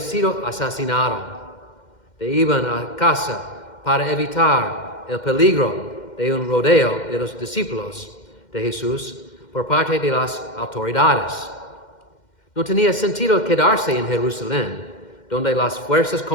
asesinado, iban a casa para evitar el peligro de un rodeo de los discípulos de Jesús por parte de las autoridades. No tenía sentido quedarse en Jerusalén, donde las fuerzas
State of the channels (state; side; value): late; right; 2.1 ms